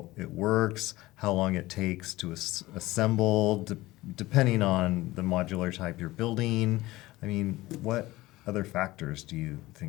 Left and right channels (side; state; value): right; quieter; 18.6 dB